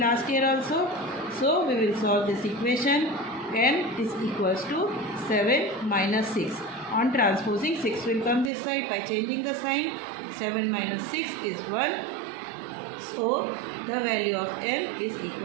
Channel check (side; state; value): left; drops out; at 8.5 s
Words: year also. So we will solve this equation. N is equals to 7 minus 6. On transposing, 6 will come this side. By changing the sign, 7 minus 6 is 1. So the value of n is